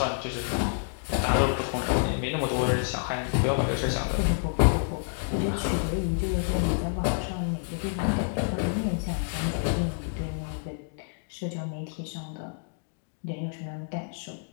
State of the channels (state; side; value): silent; right; digital silence